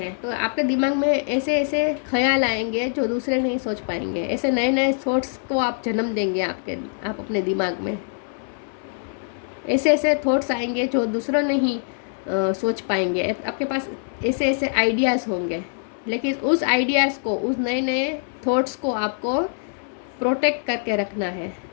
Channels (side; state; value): right; silent; 63 dB below the other